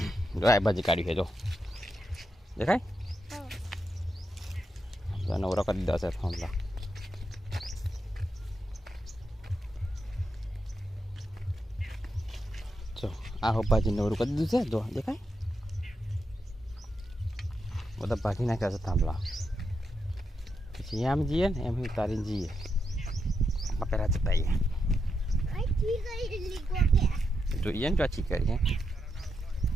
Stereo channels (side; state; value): both; normal; correlation 0.84